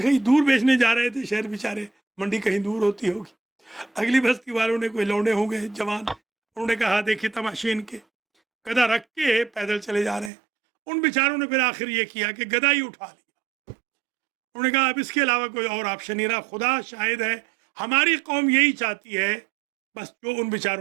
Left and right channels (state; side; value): drops out; left; at 10.3 s